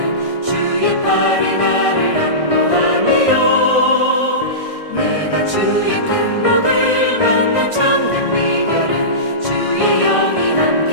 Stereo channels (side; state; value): right; late; 1.6 ms